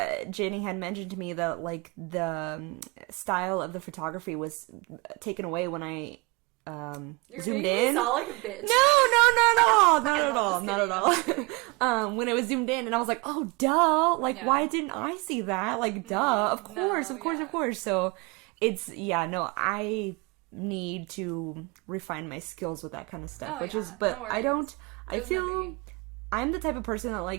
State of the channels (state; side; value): quieter; left; 27.0 dB